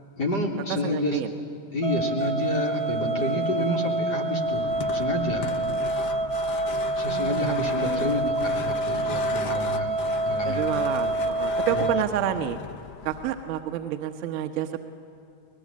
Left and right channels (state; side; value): late; right; 5.0 ms